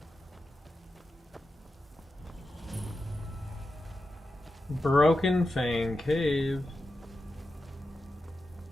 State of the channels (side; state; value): both; normal; correlation 0.90